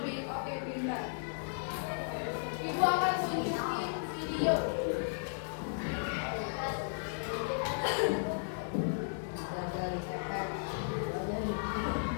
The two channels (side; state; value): right; silent; digital silence